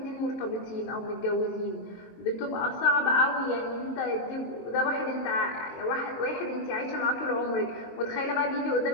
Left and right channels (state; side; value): late; right; 22 ms